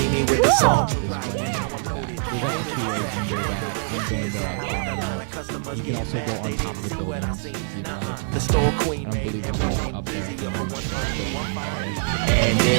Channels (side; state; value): left; silent; 59 dB below the other